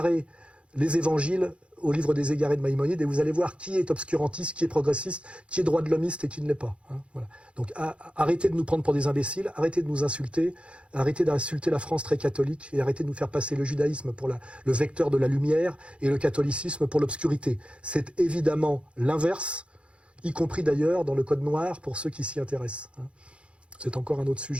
les évangiles au livre des égarés de Maïmonide et vous allez voir qui est obscurantiste, qui est progressiste, qui est droit de l'hommiste et qui ne l'est pas. Hein. Voilà. Donc arrêtez de nous prendre pour des imbéciles, arrêtez de nous insulter, arrêtez d'insulter la France très catholique et arrêtez de nous faire passer le judaïsme pour le vecteur de la lumière et le catholicisme pour l'obscurité. C'est évidemment l'inverse, y compris d'ailleurs dans le Code noir pour ceux qui s'y intéressent. C'est encore un autre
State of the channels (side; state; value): left; late; 0.060 ms